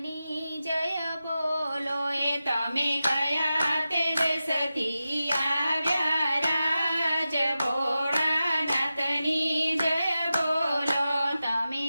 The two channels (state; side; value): inverted; both; correlation -0.93